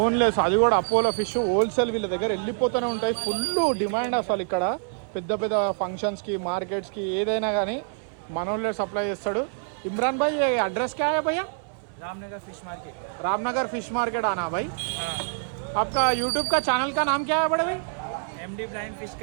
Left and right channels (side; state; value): left; silent; 61 dB below the other